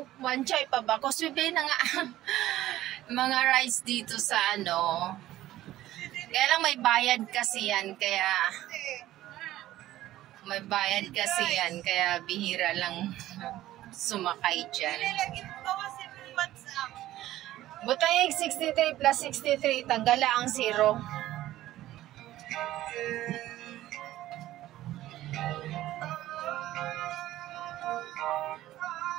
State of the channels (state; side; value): quieter; left; 14.6 dB